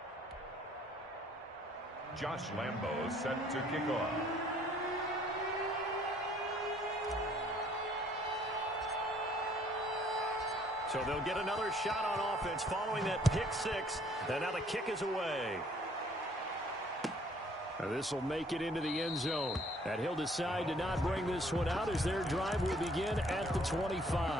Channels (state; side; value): normal; both; correlation 0.60